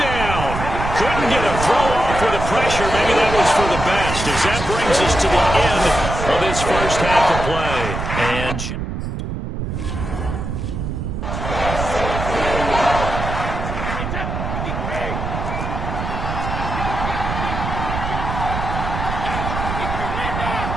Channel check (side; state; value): right; noise; rumble, 4 dB below the sound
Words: down. Couldn't get a throw off with the pressure. Maybe that was for the best, as that brings us to the end of this first half of play. And